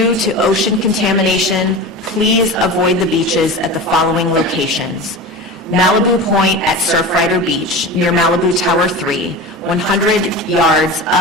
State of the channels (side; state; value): both; normal; correlation 0.30